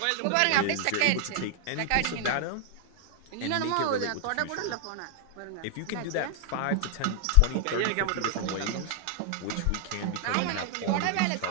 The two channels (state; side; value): different; both; correlation 0.00